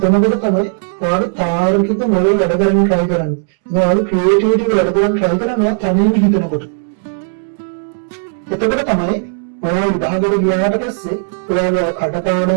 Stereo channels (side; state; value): left; silent; digital silence